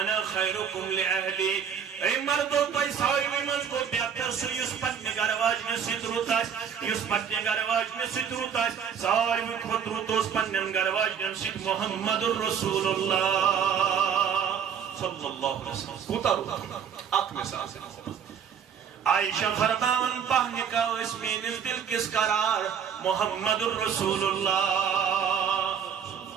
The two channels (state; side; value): quieter; left; 7.7 dB